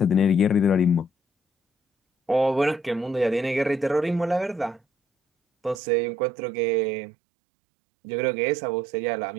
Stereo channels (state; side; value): drops out; left; at 5.8 s